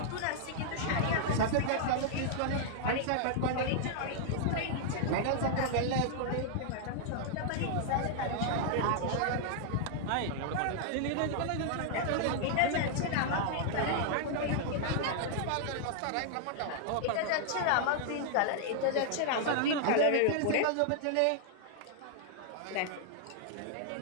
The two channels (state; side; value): different; both; correlation -0.01